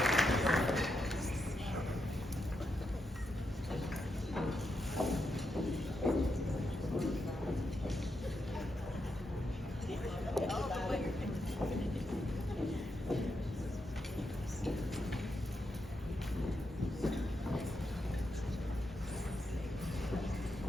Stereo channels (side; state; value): both; normal; correlation 0.84